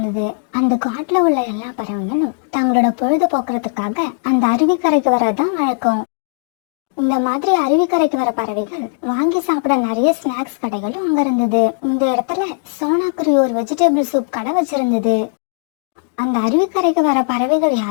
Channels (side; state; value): right; silent; digital silence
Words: அந்த காட்டுல உள்ள எல்லா பறவைகளும் தங்களோட பொழுது போக்குறதுக்காக அந்த அருவிக்கரைக்கு வரதான் வழக்கம். இந்த மாதிரி அருவிக்கரைக்கு வர பறவைகள் வாங்கி சாப்பிட நிறைய ஸ்நாக்ஸ் கடைகளும் அங்க இருந்தது. இந்த இடத்துல சோனாக்குருவி ஒரு வெஜிடபிள் சூப் கடை வச்சிருந்தது. அந்த அருவிக்கரைக்கு வர பறவைகள்